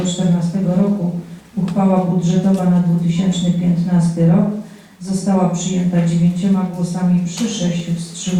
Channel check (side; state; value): both; identical; correlation 1.00